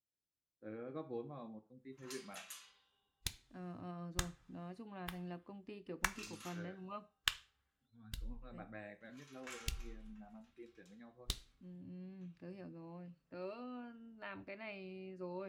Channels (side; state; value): both; identical; correlation 1.00